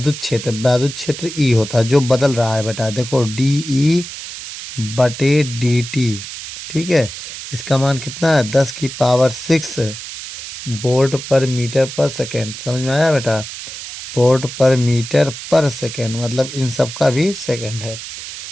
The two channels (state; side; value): noise; right; hiss, 10 dB below the sound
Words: क्षेत्र ई होता है जो बदल रहा है बेटा। देखो DE/dt, ठीक है। इसका मान कितना है 10⁻6 वोल्ट पर मीटर पर सेकेंड। समझ में आया बेटा? वोल्ट पर मीटर पर सेकेंड मतलब इन सब का भी सेकेंड है